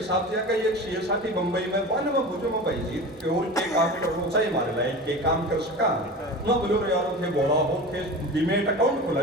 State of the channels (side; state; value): both; normal; correlation 0.32